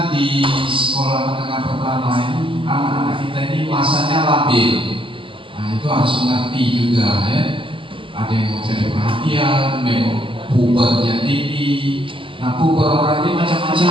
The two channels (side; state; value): left; late; 0.25 ms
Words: di sekolah menengah pertama ini anak-anak kita ini masanya labil. Nah itu harus mengerti juga ya. Ada yang mau cari perhatian, memang pubernya tinggi. Nah puber orang ini